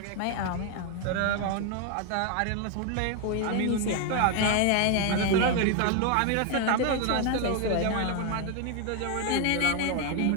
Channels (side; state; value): both; different; correlation 0.01